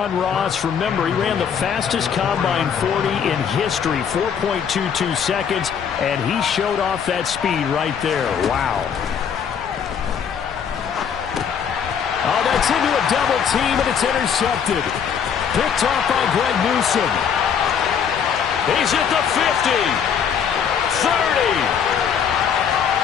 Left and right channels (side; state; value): right; quieter; 7.5 dB